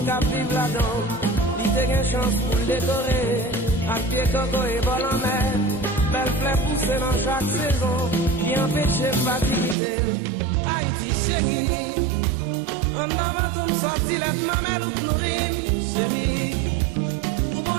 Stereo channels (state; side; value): drops out; left; at 9.8 s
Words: qui vive là-dedans. Il y a une chance pour le décorer. À pied coco et vol en mer. Belle fleur poussée dans chaque saison. Qui empêche de fatiguer. Haïti chérie. En avant comme sorti les mamelles ou nourrir. Chérie. Pour bon